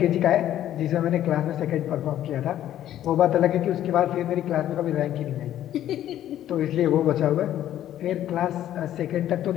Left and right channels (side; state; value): right; quieter; 12.0 dB